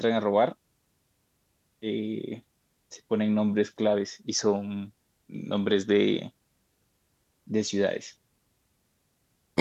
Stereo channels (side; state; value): both; identical; correlation 1.00